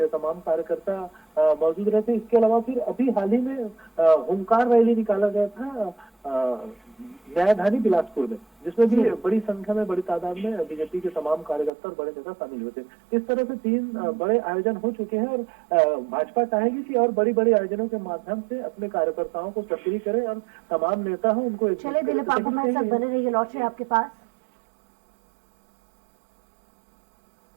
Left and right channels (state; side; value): drops out; left; at 11.7 s